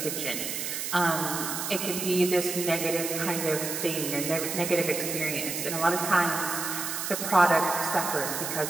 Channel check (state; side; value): noise; right; hiss, 4 dB below the sound